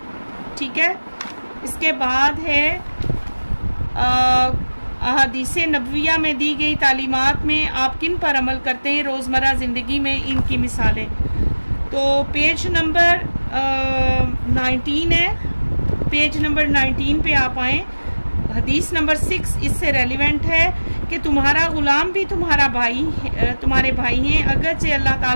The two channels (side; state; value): both; inverted; correlation -1.00